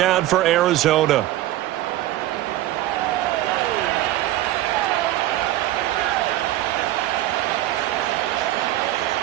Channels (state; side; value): quieter; left; 14.9 dB